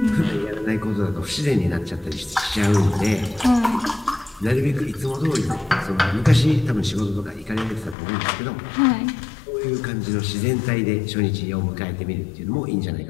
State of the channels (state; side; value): drops out; right; at 8.0 s